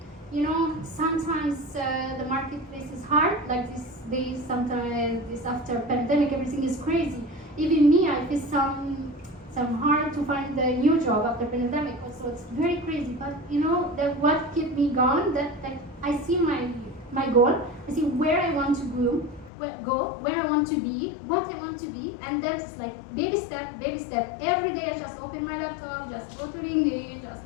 You know, sometimes the marketplace is hard, like this days, sometimes this after pandemic, everything is crazy. Even me, I face some hard to find a new job after pandemic. Also, it's very crazy. But you know, that what kept me going, that I see my goal, I see where I want to go, where I want to be, what I want to be, and that's like baby step, baby step. Every day I just open my laptop, just go to LinkedIn,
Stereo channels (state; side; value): drops out; right; at 19.5 s